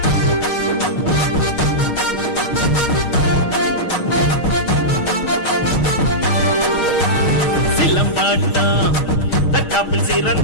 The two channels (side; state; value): right; late; 6.4 ms